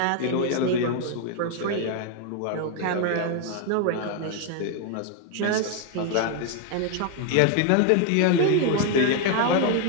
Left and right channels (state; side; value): different; both; correlation 0.01